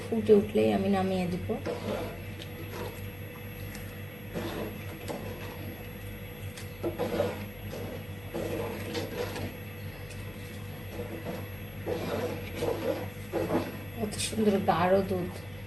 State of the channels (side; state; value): left; noise; hum, 18 dB below the sound